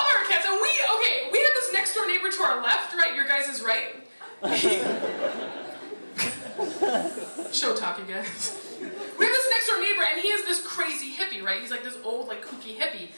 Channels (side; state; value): both; inverted; correlation -1.00